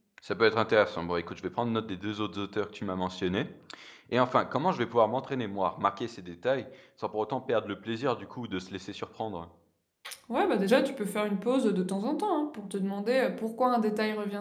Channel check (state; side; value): identical; both; correlation 1.00